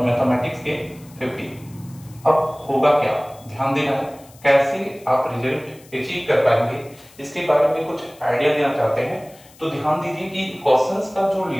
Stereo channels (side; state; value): left; noise; hiss, 25 dB below the sound